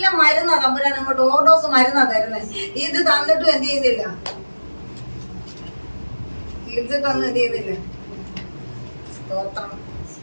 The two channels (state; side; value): inverted; both; correlation -1.00